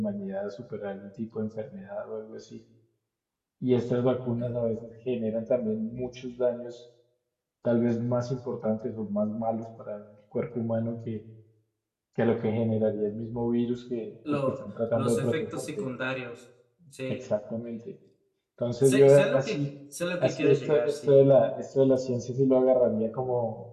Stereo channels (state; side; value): identical; both; correlation 1.00